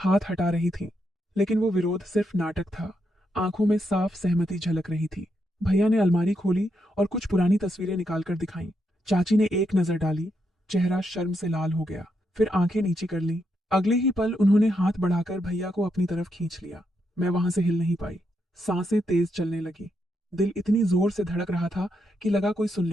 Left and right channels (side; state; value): both; normal; correlation 0.81